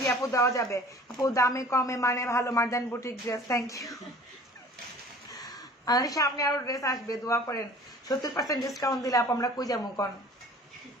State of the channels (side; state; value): both; normal; correlation 0.47